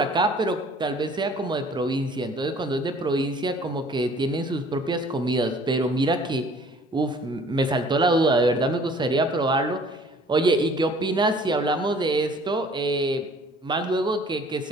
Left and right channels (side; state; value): both; normal; correlation 0.53